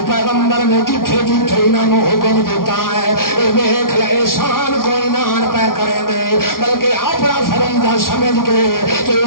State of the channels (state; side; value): late; right; 0.92 ms